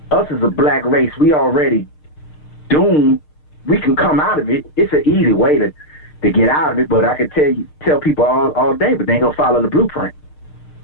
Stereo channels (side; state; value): right; late; 6.6 ms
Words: us as a black race, we already doomed. We can come out of it. It's an easy way to get out of it, but I could tell people all day, but they ain't gonna follow the blueprint.